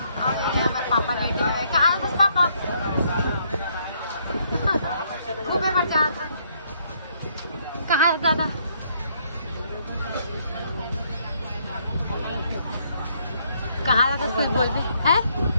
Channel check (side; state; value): both; inverted; correlation -0.69